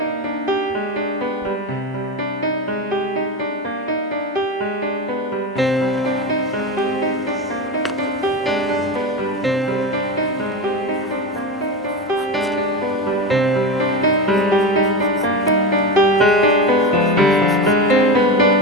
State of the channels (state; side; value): normal; both; correlation 0.21